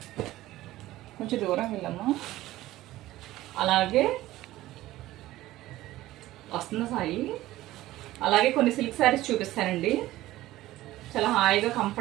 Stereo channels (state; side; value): quieter; left; 16.0 dB